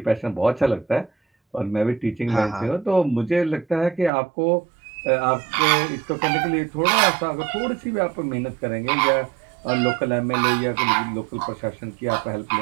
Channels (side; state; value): left; drops out; at 4.1 s